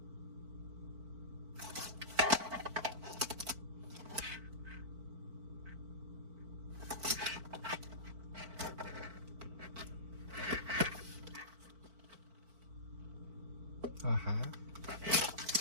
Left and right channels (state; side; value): late; left; 4.5 ms